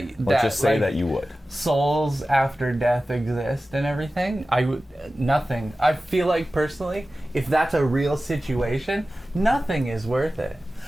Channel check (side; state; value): both; normal; correlation 0.95